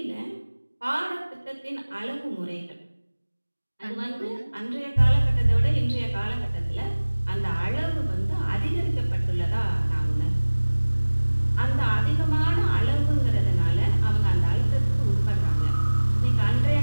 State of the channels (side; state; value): both; inverted; correlation -1.00